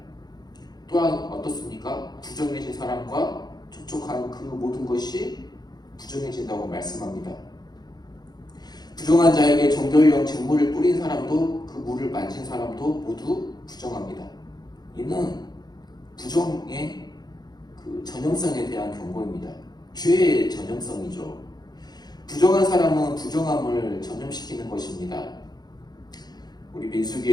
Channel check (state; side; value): late; right; 0.20 ms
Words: 또한 어떻습니까? 부정해진 사람과 접촉한 그 모든 것이 부정해진다고 말씀합니다. 부정한 자에게 정결용 잿물을 뿌린 사람도 그 물을 만진 사람도 모두 부정합니다. 이는 부정의 그 전형성에 대한 경고입니다. 죄의 전형성이죠. 부정한 사람은 부정함을 전염시키는 것입니다. 우리